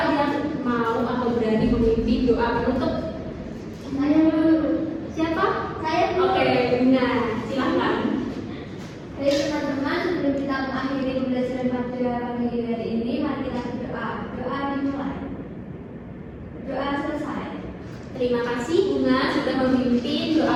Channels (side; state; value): both; identical; correlation 1.00